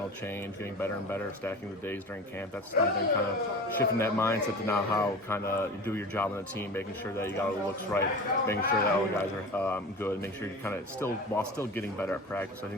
change, getting better and better, stacking the days during camp. That's something kind of shifting that mindset to now how kind of you do your job on the team, making sure that you got all the looks right, making sure that all the guys are good, make sure you kind of while still getting better at practice. I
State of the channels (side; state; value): both; normal; correlation 0.34